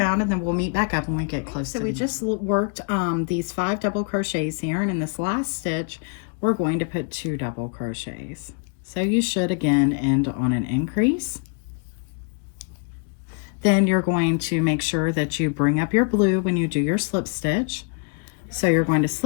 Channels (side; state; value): right; quieter; 39.4 dB